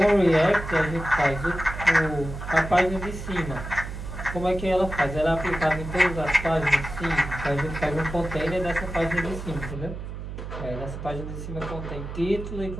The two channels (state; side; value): noise; right; hum, 8 dB below the sound